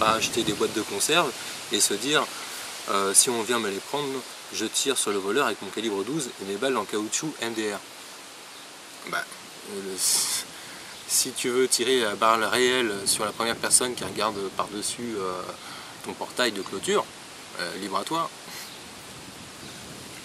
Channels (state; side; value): identical; both; correlation 1.00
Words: acheter des boîtes de conserve et se dire si on vient me les prendre, je tire sur le voleur avec mon calibre 12 et mes balles en caoutchouc MDR. Si tu veux tirer à balles réelles sur la première personne qui regarde par-dessus ton portail de clôture, libre à toi.